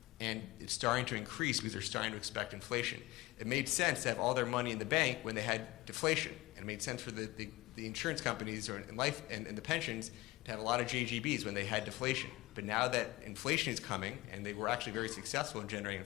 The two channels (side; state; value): right; quieter; 19.9 dB